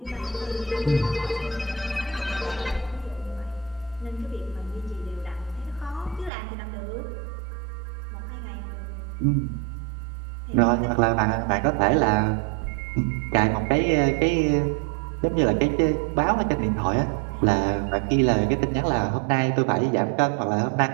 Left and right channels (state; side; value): drops out; left; at 6.3 s